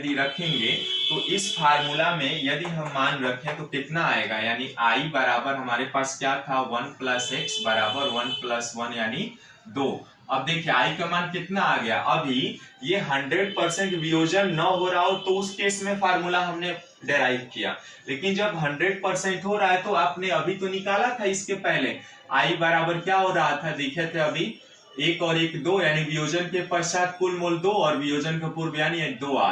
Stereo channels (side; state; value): both; identical; correlation 1.00